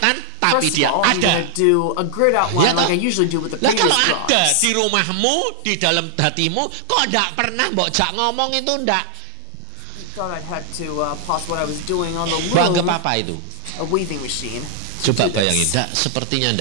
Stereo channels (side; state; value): both; different; correlation 0.00